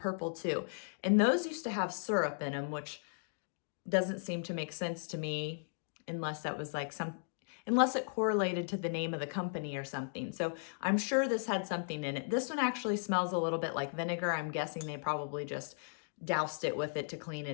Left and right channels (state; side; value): silent; right; digital silence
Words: too. And those used to have syrup in them, which doesn't seem to make sense to me unless that was like unless it correlated to the name of the company or something. So I'm sure this had something in it. This one actually smells a little bit like vinegar. I'm guessing they probably just doused it with it to clean